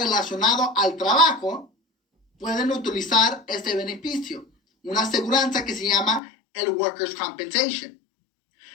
al trabajo, pueden utilizar este beneficio, una aseguranza que se llama el Workers' Compensation.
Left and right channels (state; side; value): drops out; right; at 6.2 s